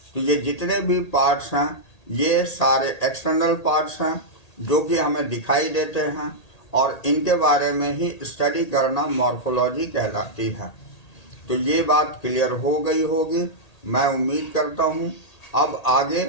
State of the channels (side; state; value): right; late; 1.8 ms